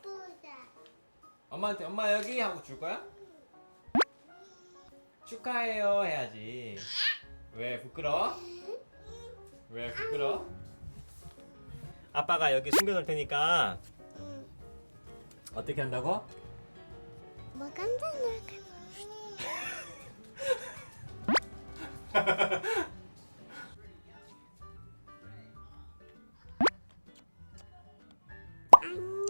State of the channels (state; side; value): inverted; both; correlation -1.00